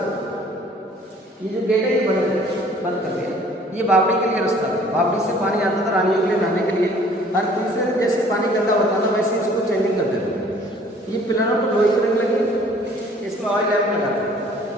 ये जो गेट है ये बंद कर दिया। ये बावड़ी के लिए रास्ता है, बावड़ी से पानी आता था रानियों के लिए नहाने के लिए, हर तीसरे जैसे पानी गंदा होता था वैसे इसको चेंजिंग कर देते थे। ये पिलरों को लोहे की रंग लगी, इसमें ऑयल लैम्प लगा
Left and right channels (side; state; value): both; normal; correlation 0.55